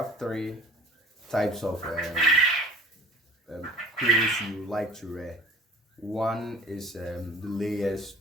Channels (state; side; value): normal; both; correlation 0.46